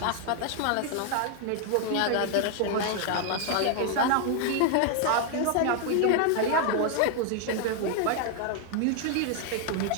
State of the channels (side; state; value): both; different; correlation 0.00